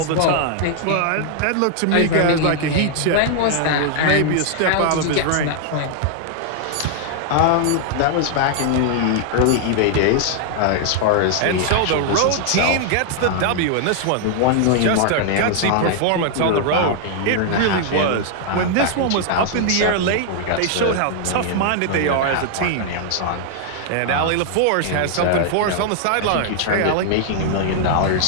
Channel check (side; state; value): both; different; correlation 0.00